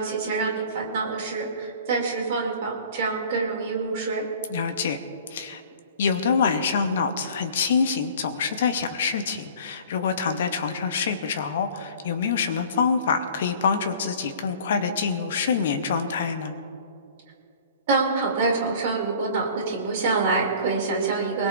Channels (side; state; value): both; inverted; correlation -0.47